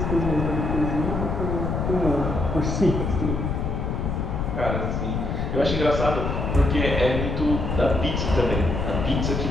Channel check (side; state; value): left; noise; rumble, 1 dB below the sound